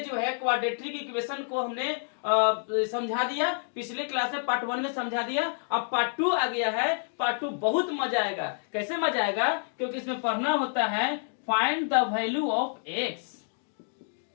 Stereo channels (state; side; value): silent; right; digital silence